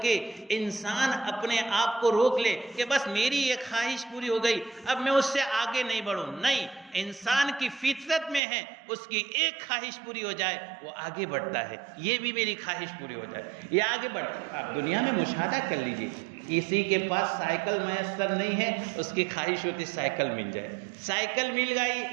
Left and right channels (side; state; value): left; drops out; at 8.4 s